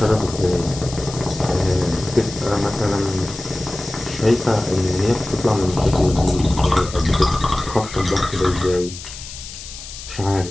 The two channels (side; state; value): left; noise; hiss, 12 dB below the sound